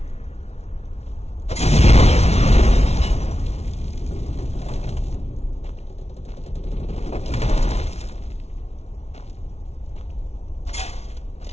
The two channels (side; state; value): right; late; 0.31 ms